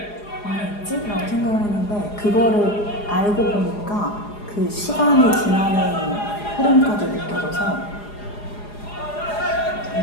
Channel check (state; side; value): late; right; 4.8 ms